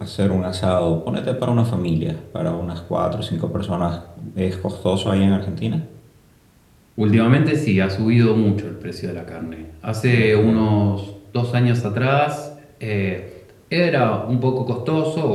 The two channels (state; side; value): identical; both; correlation 1.00